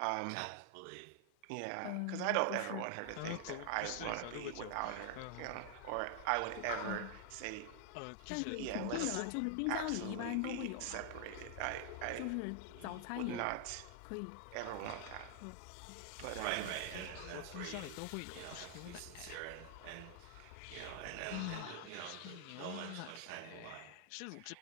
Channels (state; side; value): different; both; correlation 0.00